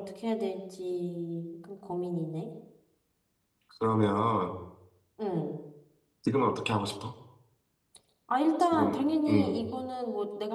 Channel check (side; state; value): both; identical; correlation 1.00